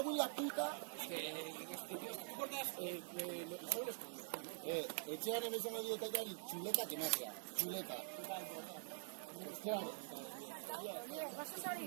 en la puta. Etxean emezan medio takari, chuleta que magia, chuleta. Claro.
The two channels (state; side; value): silent; left; digital silence